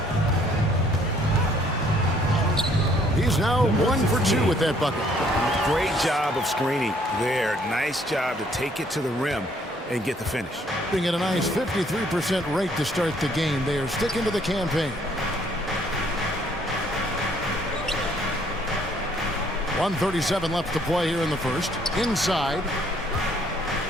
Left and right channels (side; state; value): both; normal; correlation 0.64